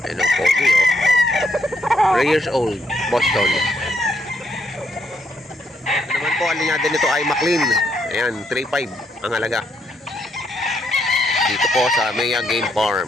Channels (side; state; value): both; normal; correlation 0.74